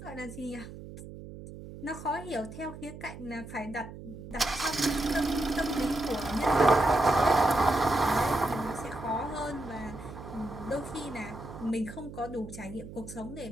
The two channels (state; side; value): noise; right; hum, 13 dB below the sound